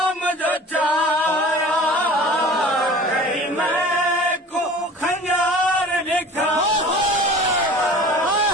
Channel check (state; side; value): normal; both; correlation 0.42